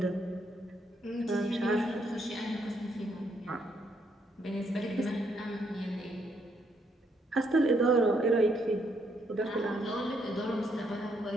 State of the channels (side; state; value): both; normal; correlation 0.74